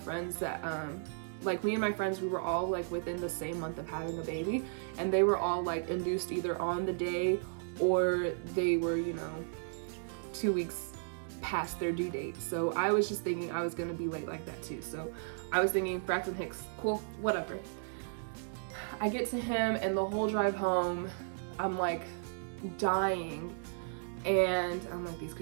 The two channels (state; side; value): silent; left; digital silence